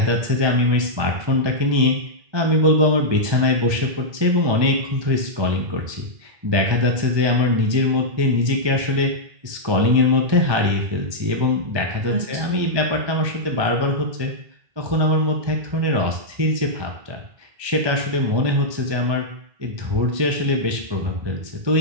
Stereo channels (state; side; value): late; left; 1.2 ms